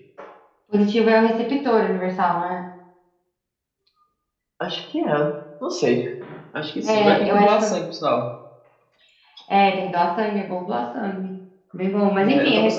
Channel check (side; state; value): both; identical; correlation 1.00